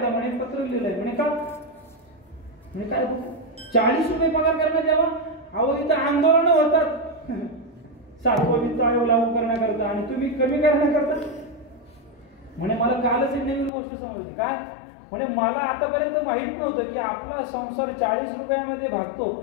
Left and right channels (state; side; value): drops out; right; at 13.7 s